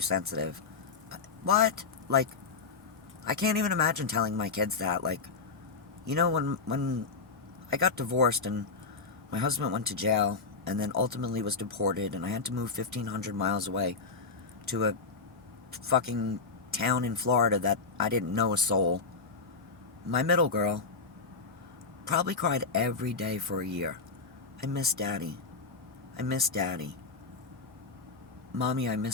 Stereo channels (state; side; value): quieter; right; 4.6 dB